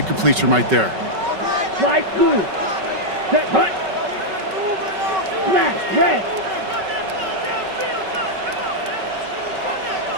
completion right there. Slide blue. Set, hut. Smash, red.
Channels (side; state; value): left; late; 5.3 ms